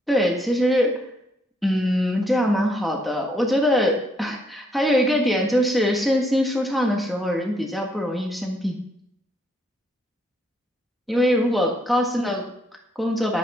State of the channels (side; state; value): both; normal; correlation 0.71